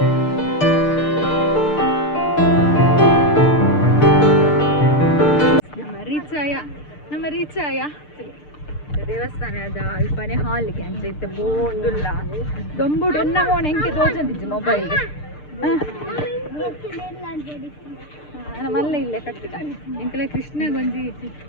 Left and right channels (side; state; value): right; late; 6.7 ms